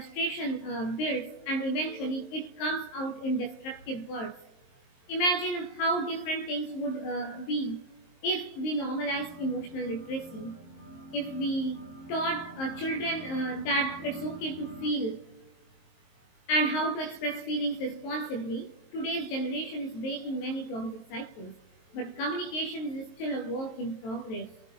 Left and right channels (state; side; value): late; right; 23 ms